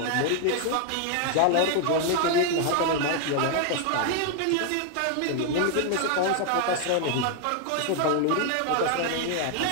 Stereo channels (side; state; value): both; different; correlation 0.00